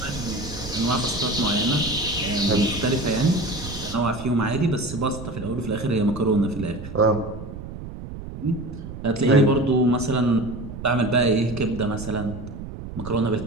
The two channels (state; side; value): noise; right; rumble, 10 dB below the sound